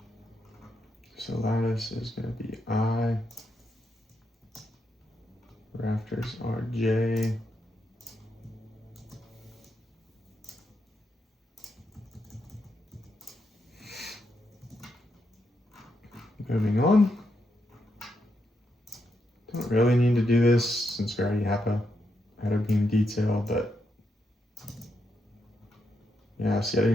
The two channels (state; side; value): normal; both; correlation 0.82